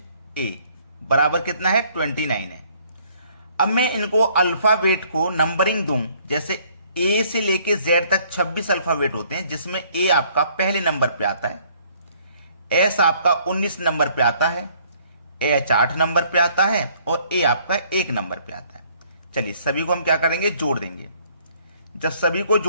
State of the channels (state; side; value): inverted; both; correlation -0.61